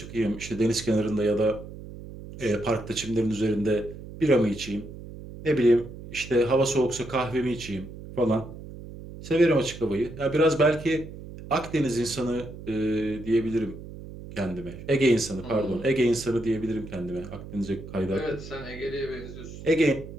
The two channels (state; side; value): noise; right; hum, 13 dB below the sound